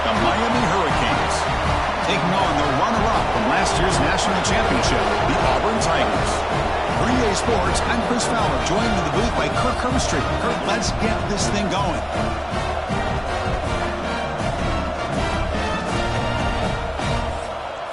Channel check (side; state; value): both; identical; correlation 1.00